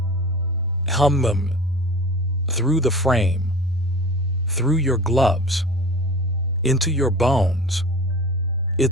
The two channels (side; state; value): both; normal; correlation 0.38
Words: hum, through the frame, through your gloves, into your bones.